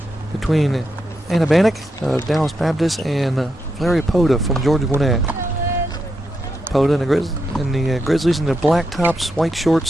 between Anna Bannock of Dallas Baptist and Larry Poda from Georgia Gwinnett. Poda and the Grizzlies in the black tops, white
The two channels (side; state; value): both; normal; correlation 0.84